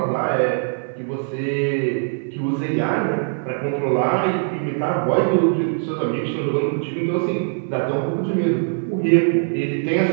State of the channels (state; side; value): silent; left; digital silence